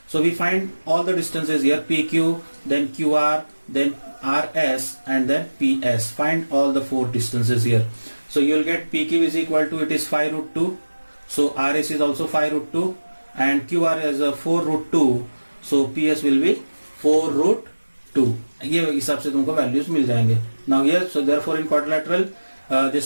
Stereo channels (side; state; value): both; inverted; correlation -1.00